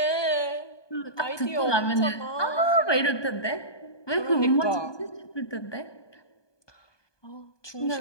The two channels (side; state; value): right; late; 1.2 ms